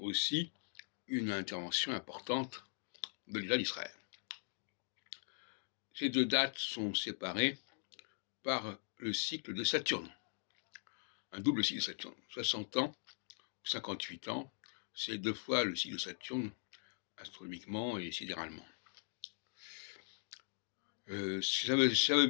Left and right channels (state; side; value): silent; right; digital silence